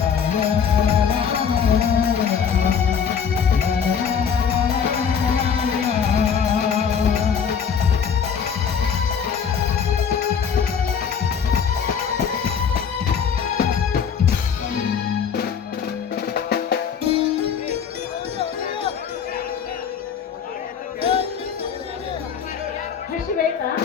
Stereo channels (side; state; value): right; quieter; 7.1 dB